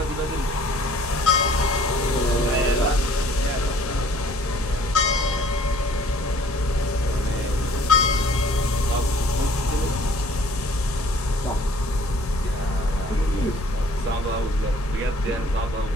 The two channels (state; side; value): normal; both; correlation 0.55